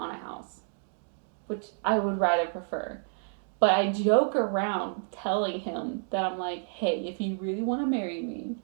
a house, which I would rather prefer. But I joke around telling him that I'm like, hey, if you really want to marry me,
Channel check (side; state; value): left; silent; digital silence